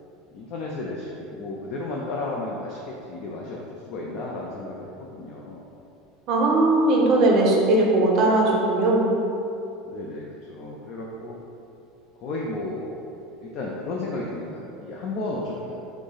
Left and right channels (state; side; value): normal; both; correlation 0.31